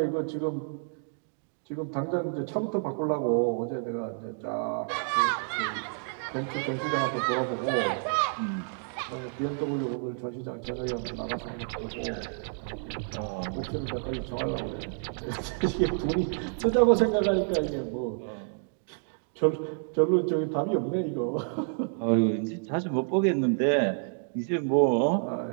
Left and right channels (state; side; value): silent; left; 58 dB below the other